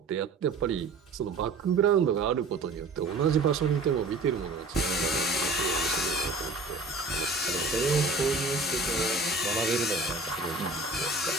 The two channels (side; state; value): left; quieter; 3.5 dB